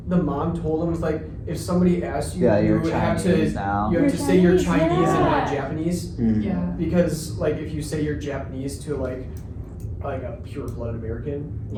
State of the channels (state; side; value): identical; both; correlation 1.00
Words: the mom told him, was like, if somebody asks you, Yeah, you you're have Chinese to now. you have You're to say you're Chinese, Chinese and not yeah. Japanese, Yeah. because like if you say you're Japanese to like a pure blood American,